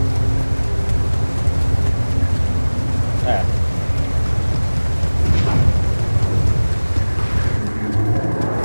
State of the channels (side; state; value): both; inverted; correlation -1.00